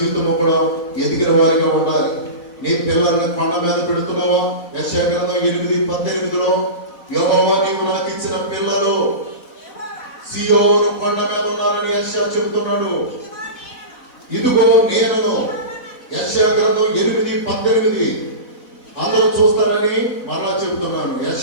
కూడా ఎదిగిన వారిగా ఉండాలి. నీ పిల్లల్ని కొండ మీద పెడుతున్నావా? యెషయా గ్రంథం 8:18 యెహోవా నీవు నాకు ఇచ్చిన పిల్లలు సియోను కొండ మీద ఉన్నారని యెషయా చెబుతున్నాడు. ఇదిగో నేను. యెషయా గ్రంథం 8:18 అందరూ చూస్తారని మరలా చెబుతున్నాను.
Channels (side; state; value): right; late; 4.0 ms